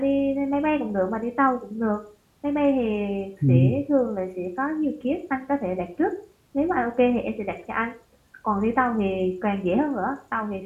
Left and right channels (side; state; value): both; identical; correlation 1.00